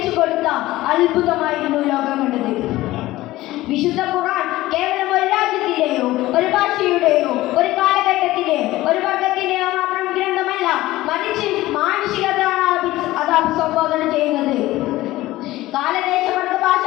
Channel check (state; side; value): quieter; right; 17.1 dB